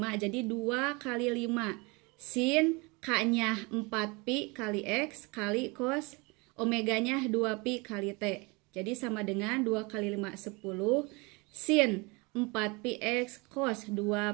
jadi 2 kali 5 sin K-nya 4pi kali X kali cos omeganya 2pi kali T. Jadi sama dengan 2 kali 5 10 sin 4pi X cos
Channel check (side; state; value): left; quieter; 27.2 dB